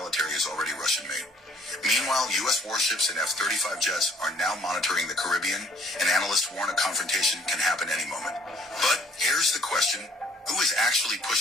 is already Russian-made. Meanwhile, U.S. warships and F-35 jets are now monitoring the Caribbean, and analysts warn a confrontation can happen any moment. But here's the question. Who is actually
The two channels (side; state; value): both; normal; correlation 0.59